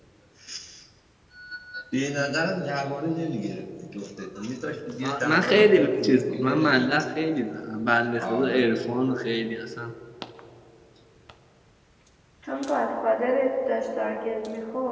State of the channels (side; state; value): both; identical; correlation 1.00